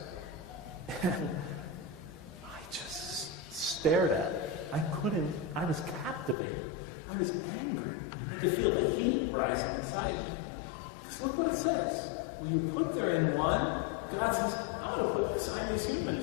and I just stared at it. I was captivated. I was angry. I could feel the heat rising inside me. Because look what it says. Will you put therein one? God says, I'm going to assign these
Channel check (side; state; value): right; drops out; at 6.4 s